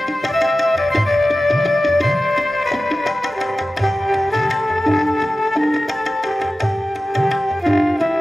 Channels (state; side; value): normal; both; correlation 0.95